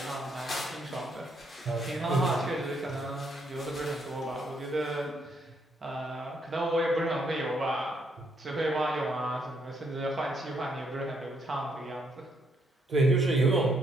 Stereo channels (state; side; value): normal; both; correlation 0.73